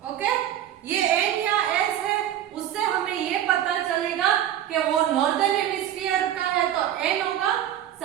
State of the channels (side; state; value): left; quieter; 11.3 dB